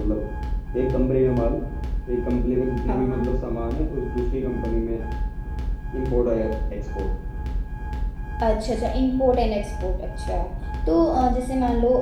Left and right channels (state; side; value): identical; both; correlation 1.00